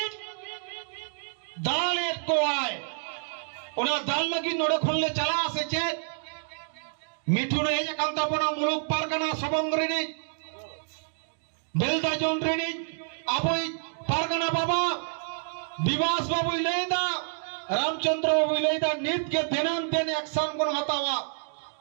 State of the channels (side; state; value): left; silent; digital silence